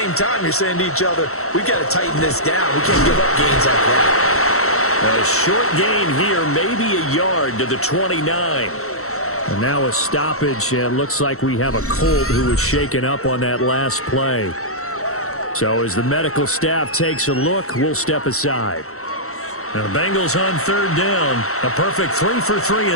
time, you're saying to each other, we've got to tighten this down. We can't give up gains like that. A short gain here, maybe a yard to the 29. And now a stoppage, and looks like we have a Colt who was shaken up on that last play. So as the medical staff takes a look, we'll step aside. Now the Bengals on third down. A perfect 3 for 3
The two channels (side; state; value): right; late; 0.63 ms